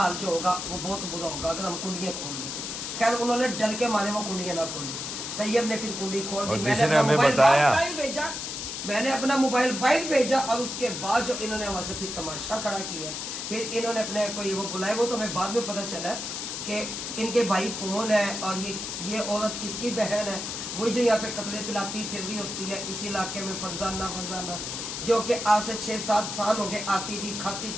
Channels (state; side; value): noise; left; hiss, 5 dB below the sound